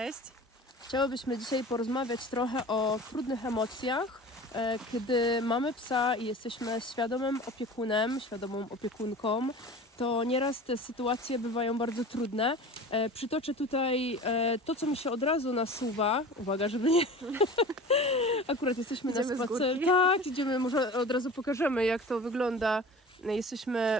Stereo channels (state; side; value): normal; both; correlation 0.38